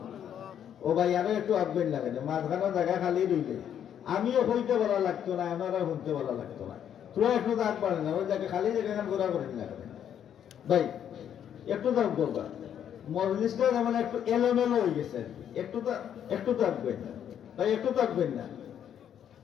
ও ভাই, আরো একটু আঁকবেন না কেন, মাঝখানে জায়গা খালি রইলে আমিও হইতে বলা লাগতো না, আমারও শুনতে বলা লাগতো না। তুই একটু দাগ পারে না, ওই জায়গায় খালি জায়গা ঘোরা করেন না কেন ভাই, একটু দাগ করবা। মজলিসটা যেমন একটু এলোমেলো হয়ে গেছে, একটু থাকবেন না ভাই, একটু থাকবেন না।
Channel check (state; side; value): quieter; right; 9.4 dB